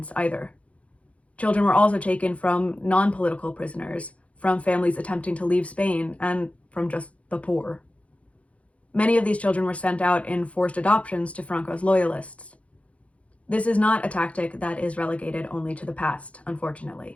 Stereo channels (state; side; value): late; right; 0.064 ms